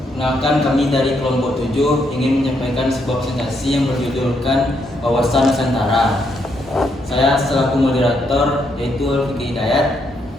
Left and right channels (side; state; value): both; normal; correlation 0.76